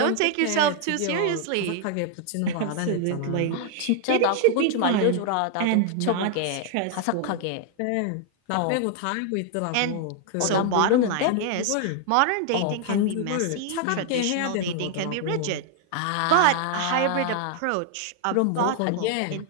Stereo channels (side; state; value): both; different; correlation 0.00